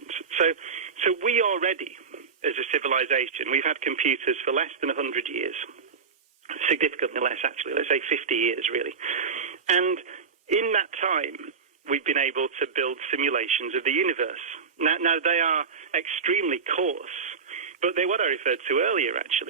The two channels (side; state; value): left; quieter; 5.7 dB